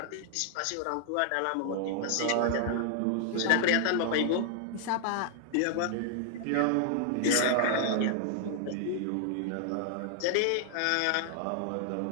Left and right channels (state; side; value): different; both; correlation 0.00